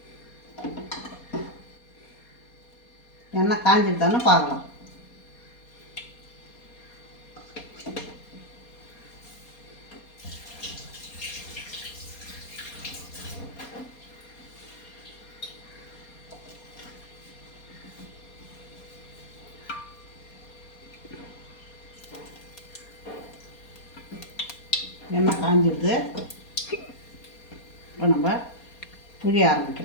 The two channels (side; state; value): right; late; 4.2 ms